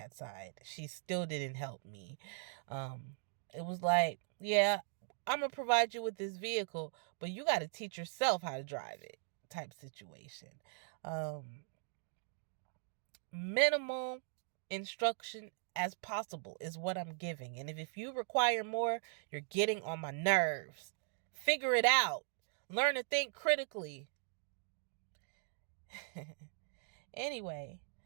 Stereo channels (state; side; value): silent; left; digital silence